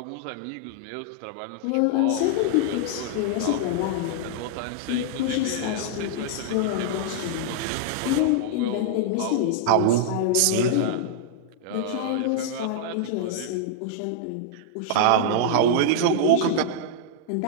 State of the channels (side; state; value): both; different; correlation -0.01